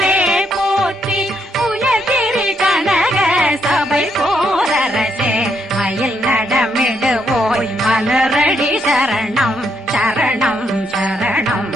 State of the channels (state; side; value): normal; both; correlation 0.76